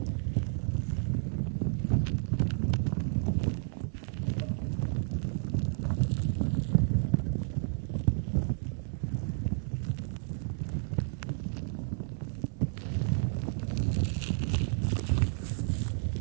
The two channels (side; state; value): left; silent; 57 dB below the other